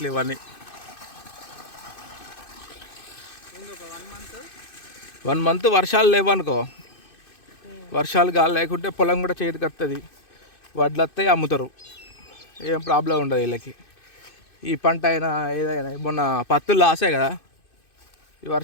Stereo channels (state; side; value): late; right; 2.6 ms